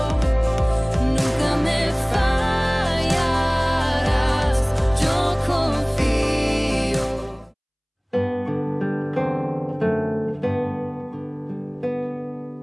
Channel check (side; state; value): both; identical; correlation 1.00